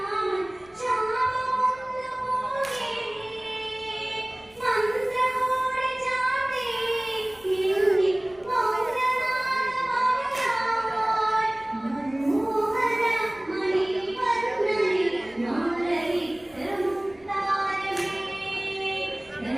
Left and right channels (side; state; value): left; noise; rumble, 29 dB below the sound